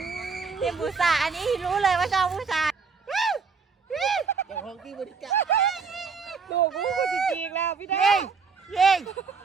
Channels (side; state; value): left; quieter; 5.2 dB